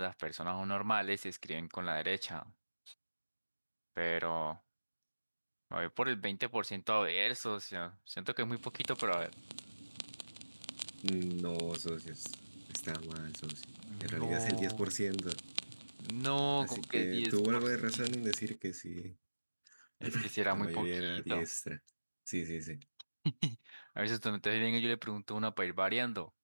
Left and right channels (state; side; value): inverted; both; correlation -1.00